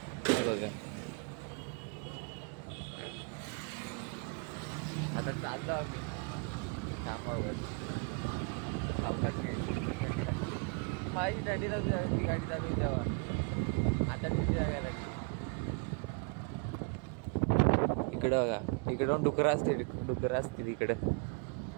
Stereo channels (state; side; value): quieter; left; 36.7 dB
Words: बघा आता चाललो आम्ही कामावर. सावकाश माझी गाडी चालू तेव्हा आता तिथे जायला लागली. इकडं बघा, इकडं डुकरं असतील इकडे